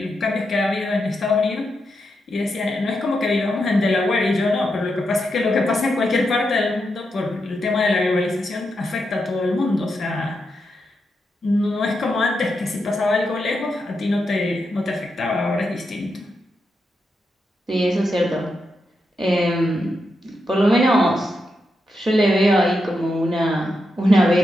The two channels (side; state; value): both; normal; correlation 0.85